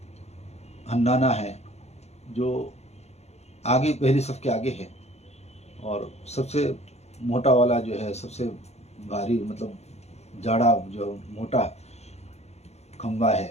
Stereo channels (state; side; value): late; right; 0.31 ms